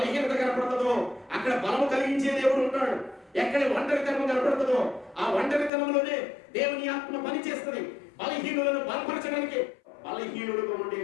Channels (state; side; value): drops out; right; at 5.7 s